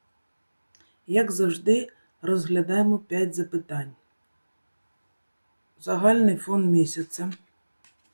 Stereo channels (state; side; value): inverted; both; correlation -1.00